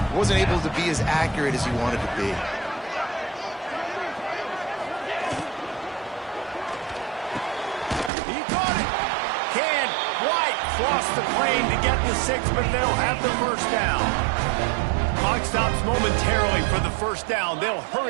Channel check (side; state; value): left; drops out; at 8.1 s